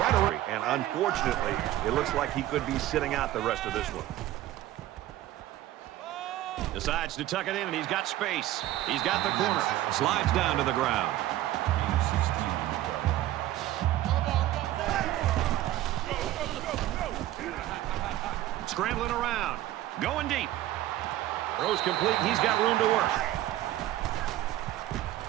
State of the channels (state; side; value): quieter; left; 14.3 dB